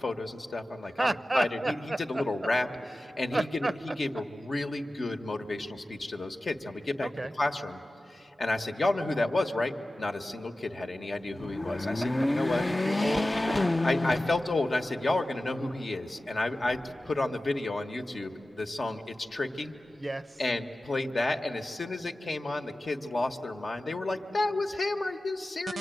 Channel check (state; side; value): normal; both; correlation 0.95